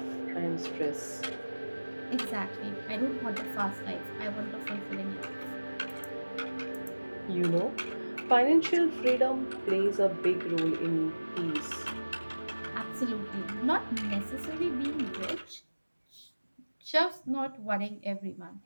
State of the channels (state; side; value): inverted; both; correlation -1.00